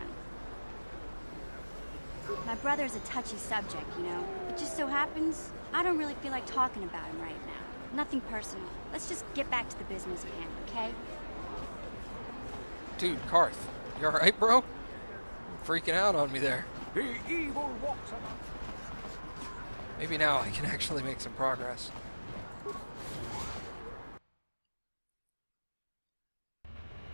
My brother's a touchy subject, you know? It just so happens, I don't really feel like talking about him right now. Nothing personal. Let's just get back to the business at hand, okay? Dude, Carth, you alright, bro? You're freaking out on me there. The evil walks among. Maybe now I can actually make some progress.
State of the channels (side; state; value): both; inverted; correlation -1.00